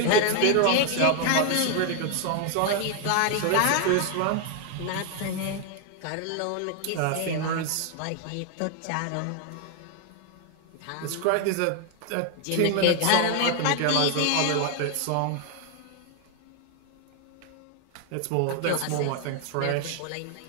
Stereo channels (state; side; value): different; both; correlation 0.00